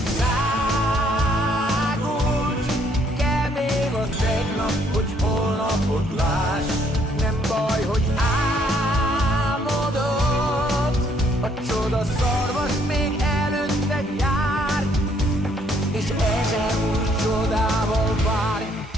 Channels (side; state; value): both; normal; correlation 0.67